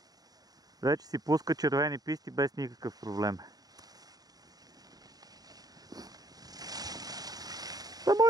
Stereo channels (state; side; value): late; left; 0.18 ms